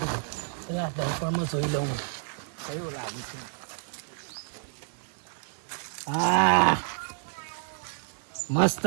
એટલે આ દર્પણમાં જોઈ લઉં કયું લાગે છે હા મસ્ત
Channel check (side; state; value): left; silent; 58 dB below the other